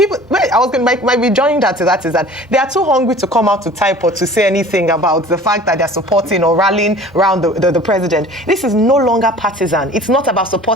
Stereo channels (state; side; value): normal; both; correlation 0.45